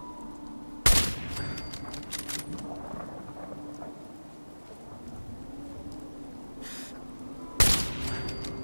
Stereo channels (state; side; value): inverted; both; correlation -1.00